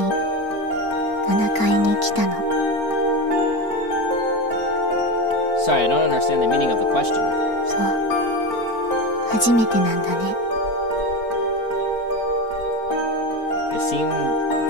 7階に来たの。 Sorry, I don't understand the meaning of the question. そう、初めてなんだね。 It seemed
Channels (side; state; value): right; late; 4.4 ms